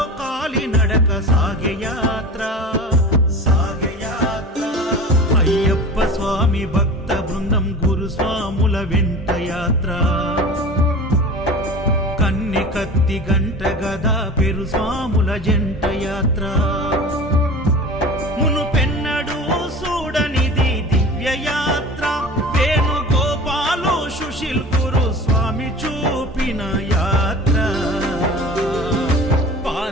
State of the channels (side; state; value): both; normal; correlation 0.37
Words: కాలి నడక సాగే యాత్ర సాగే యాత్ర అయ్యప్ప స్వామి భక్త బృందం గురుస్వాముల వెంట యాత్ర కన్నె కత్తి గంట గదా పెరు స్వాముల జంట యాత్ర మునుపెన్నడూ చూడనిది దివ్య యాత్ర వేణుగోపాలు సుశీల్ గురు స్వామి చూపిన యాత్ర